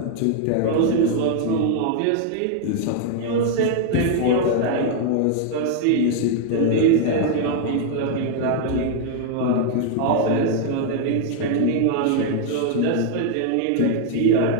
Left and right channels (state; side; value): different; both; correlation 0.00